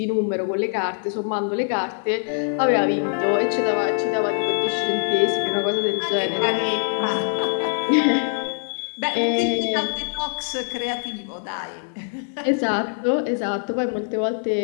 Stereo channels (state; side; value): silent; right; digital silence